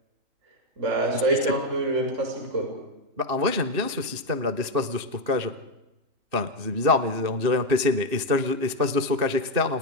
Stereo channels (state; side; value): late; left; 2.7 ms